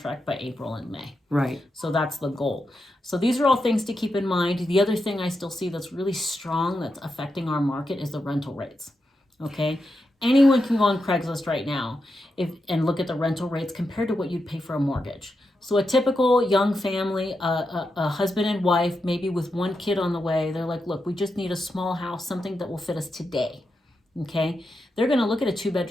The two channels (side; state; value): both; normal; correlation 0.87